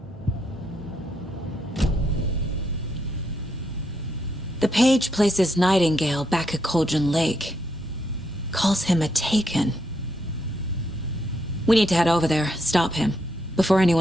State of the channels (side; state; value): both; normal; correlation 0.77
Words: The page places Nightingale back at Cauldron Lake. Calls him a Taken. We need to head over there, stop him, before